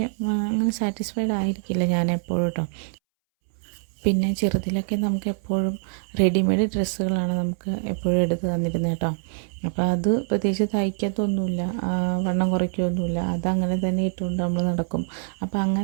അങ്ങനെ സാറ്റിസ്ഫൈഡ് ആയിരിക്കില്ല ഞാൻ എപ്പോഴും കേട്ടോ. പിന്നെ ചെറുതിലൊക്കെ നമുക്ക് എപ്പോഴും റെഡിമെയ്ഡ് ഡ്രസ്സുകളാണ് നമുക്ക് എപ്പോഴും എടുത്ത് തന്നിരുന്നത് കേട്ടോ. അപ്പോൾ അത് പ്രത്യേകിച്ച് തയ്ക്കത്തൊന്നുമില്ല, വണ്ണം കുറയ്ക്കുകയൊന്നുമില്ല, അതങ്ങനെ തന്നെ ഇട്ടുകൊണ്ട് നമ്മൾ നടക്കും. അപ്പോൾ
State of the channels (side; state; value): left; silent; 62 dB below the other